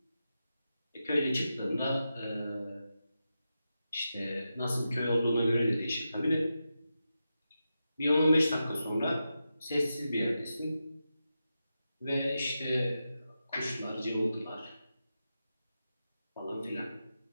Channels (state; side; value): inverted; both; correlation -0.89